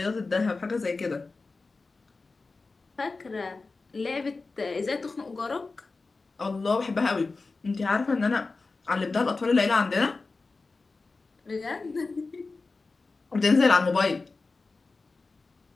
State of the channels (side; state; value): right; quieter; 3.8 dB